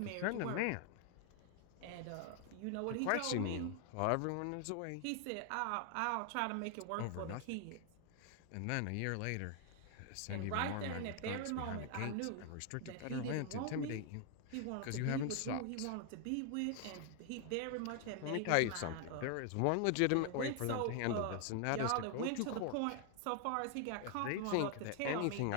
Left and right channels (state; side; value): different; both; correlation 0.00